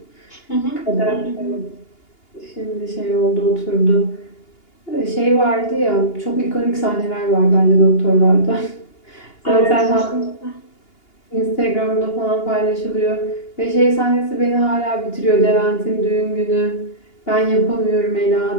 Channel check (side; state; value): right; late; 2.8 ms